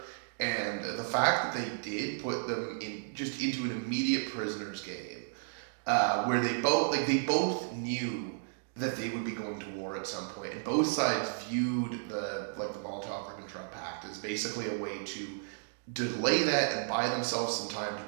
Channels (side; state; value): left; silent; digital silence